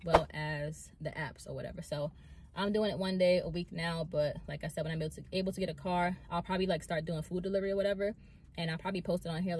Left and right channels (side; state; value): both; identical; correlation 1.00